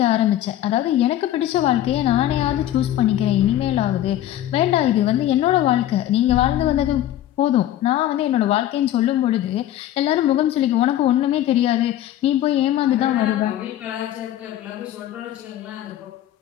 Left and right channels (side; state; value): right; quieter; 12.8 dB